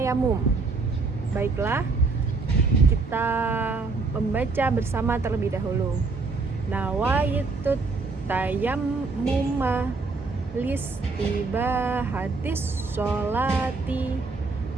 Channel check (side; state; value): left; quieter; 4.0 dB